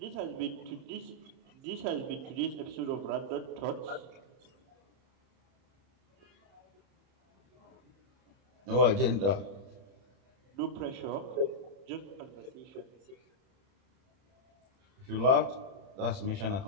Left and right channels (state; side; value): late; left; 30 ms